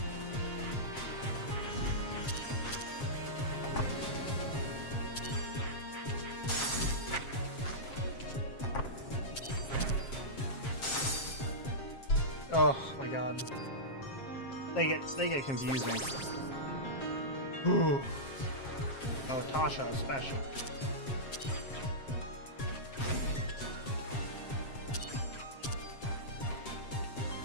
Oh my god. They get confusing. Ooh. Oh, Tasha especially.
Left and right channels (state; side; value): late; right; 7.5 ms